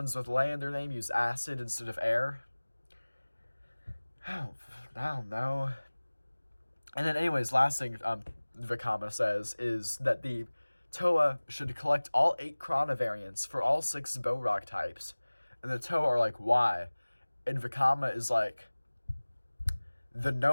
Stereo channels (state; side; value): inverted; both; correlation -1.00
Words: with Lay in their name use acid instead of air. I don't know. And then anyways, last thing Vakama says is that the Toa should collect all 8 Krana variants for all 6 Borok types. And the Toa are like, why? And Vakama is like, the